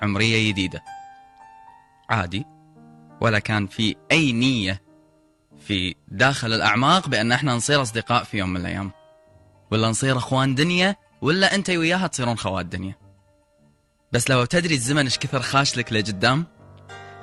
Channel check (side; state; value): both; identical; correlation 1.00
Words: عمرية جديدة عادي، ولا كان في اي نية في داخل الاعماق بان احنا نصير اصدقاء في يوم من الايام، ولا نصير اخوان دنيا، ولا انت وياها تصيرون خوات دنيا. بس لو تدري الزمن ايش كثر خاش لك لقدام،